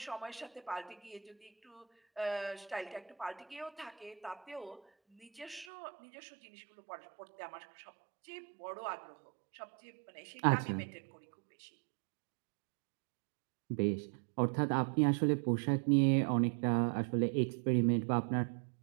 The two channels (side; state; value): left; drops out; at 5.7 s